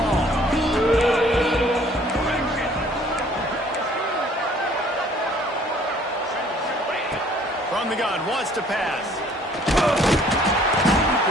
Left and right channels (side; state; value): both; normal; correlation 0.57